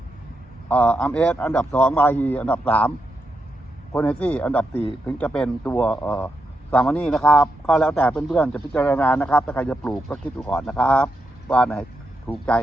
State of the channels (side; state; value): both; normal; correlation 0.84